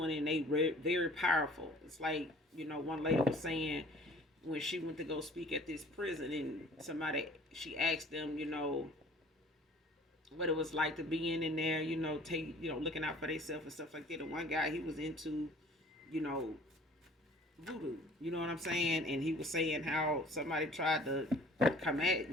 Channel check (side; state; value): both; normal; correlation 0.51